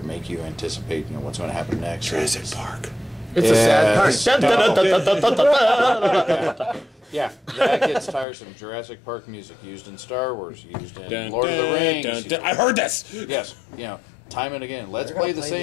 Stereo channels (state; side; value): drops out; right; at 8.2 s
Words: make you anticipate what's going to happen next. Jurassic Park. It's a sad part. Yeah, that gets tiresome. Jurassic Park music used in Star Wars, used in Lord of the Rings. I heard this. Yes, time and again. Let's They're gonna play the play